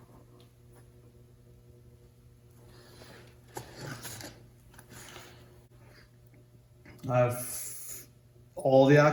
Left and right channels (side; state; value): both; identical; correlation 1.00